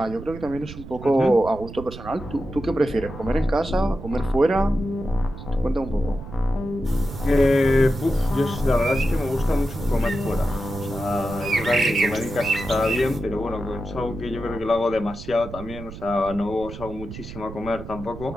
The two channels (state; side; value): noise; right; rumble, 12 dB below the sound